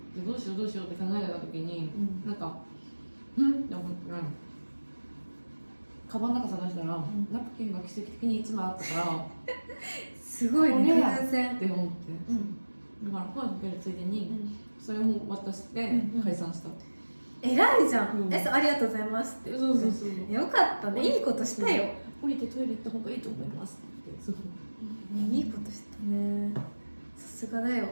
どうしようって考えた時に、なんかって思ってカバンの中探したら、ナプキンが奇跡的に1枚あったからすごいね、偶然って思って、だから声かけるついでに、それを渡して解散した。偉いじゃん、ありがとうございますって。そうよかったね、いいことしたよ。降りてトイレ行った方がいいと思いますっていいことしたね、さすがだよ。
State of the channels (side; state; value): both; inverted; correlation -1.00